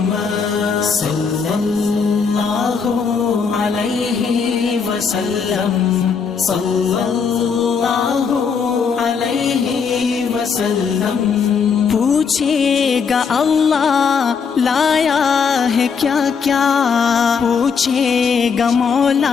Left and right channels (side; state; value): right; quieter; 5.9 dB